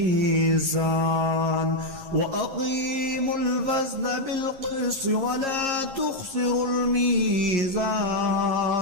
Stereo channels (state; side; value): late; left; 11 ms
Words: وأقيموا الوزن بالقسط ولا تخسروا الميزان